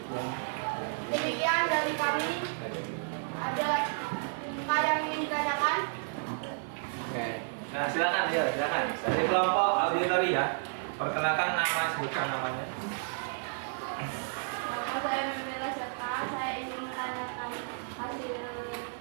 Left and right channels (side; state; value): left; silent; 57 dB below the other